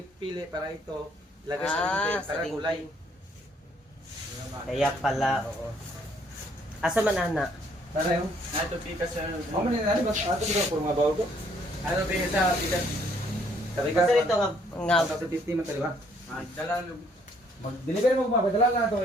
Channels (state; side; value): normal; both; correlation 0.65